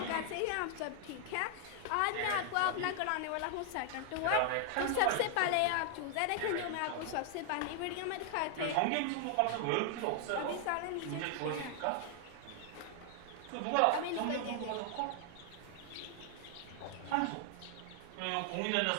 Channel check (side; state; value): both; different; correlation 0.00